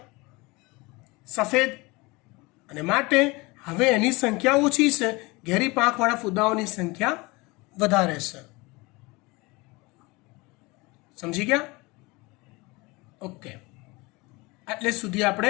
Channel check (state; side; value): quieter; right; 24.3 dB